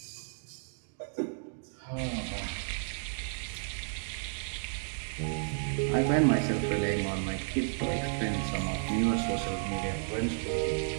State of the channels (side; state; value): left; silent; digital silence